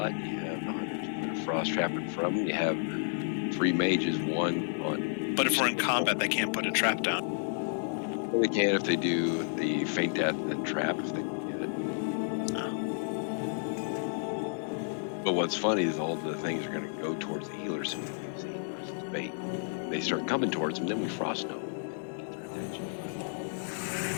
You have the hunters. You put a frost trap in front of them. You have 3 mages, one on. But if we're in combat, they can't put a trap down. Well, they can if they do the faint death and trap if they can get it. Oh. But what's funny is all the things are going to go towards the healers. So we use the healers as bait. They start coming towards them, then we frost no. Get their attention.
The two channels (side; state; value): right; silent; 57 dB below the other